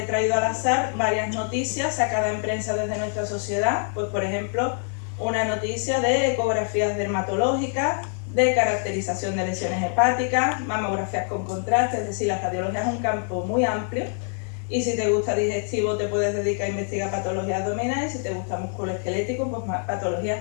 traído al azar varias noticias sacadas en prensa desde nuestra sociedad, pues por ejemplo, una noticia de ecografías dermatológicas, de caracterización de lesiones hepáticas, mamografías con contraste, es decir, la radiología es un campo muy amplio, y si te gusta digestivo te puedes dedicar a investigar patologías abdominales, y si te gusta musculoesquelético, pues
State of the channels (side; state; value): right; silent; 57 dB below the other